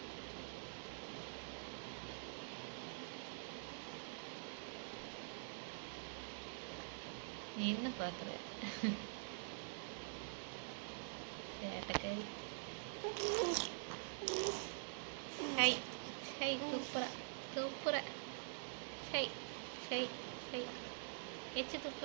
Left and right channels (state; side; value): silent; left; digital silence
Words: நீ என்ன பார்க்குற? சேட்டைக்காரி. ஹை ஹை துப்புரா துப்புரா ஹை ஹை ஹை எச்சு